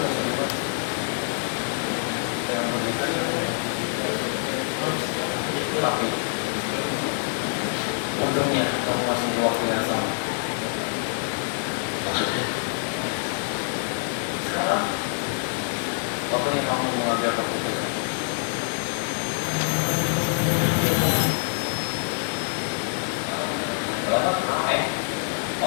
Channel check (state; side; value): silent; right; 60 dB below the other